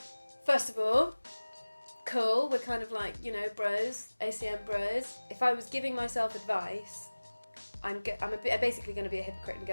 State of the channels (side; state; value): both; inverted; correlation -1.00